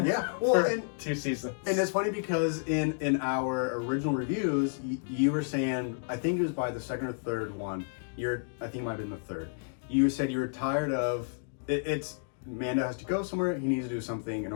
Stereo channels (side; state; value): right; silent; digital silence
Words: Yeah. Well, for 2 seasons. And it's funny because in our original reviews, you were saying, I think it was by the second or third one. I think it might have been the third. You said you were tired of it's Mando has to go somewhere. He needs to do something. In